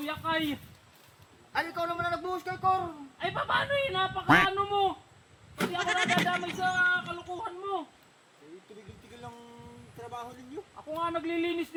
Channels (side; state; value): both; identical; correlation 1.00